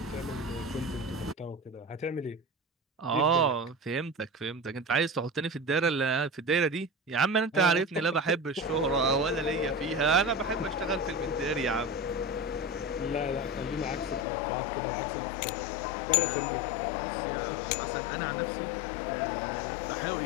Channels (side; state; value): right; drops out; at 14.2 s